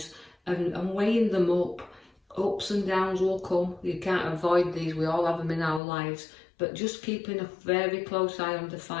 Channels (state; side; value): drops out; right; at 5.8 s